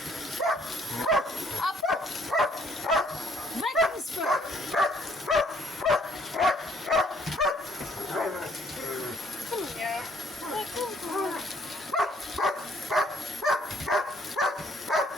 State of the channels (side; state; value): both; normal; correlation 0.64